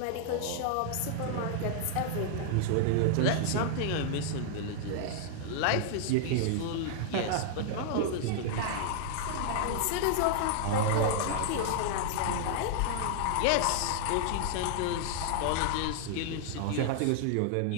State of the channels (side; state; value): both; different; correlation -0.01